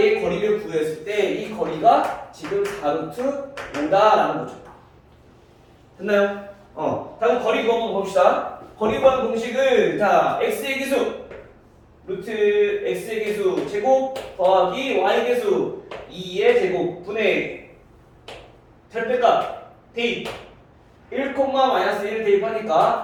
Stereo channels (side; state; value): both; identical; correlation 1.00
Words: 거리를 구했을 때 이 거리가 지금 4루트 5다라는 거죠. 됐나요? 자, 그럼 거리 구한 번 봅시다. 거리 구하는 공식은 자, x의 기수 루트 x의 기수 제곱 더하기 y의 기수 2의 제곱 분의 절대값 대입 1, 마이너스 1을